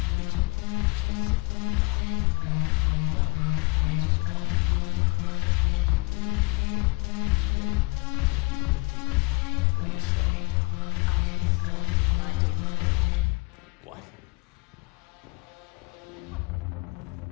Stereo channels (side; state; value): right; quieter; 28.2 dB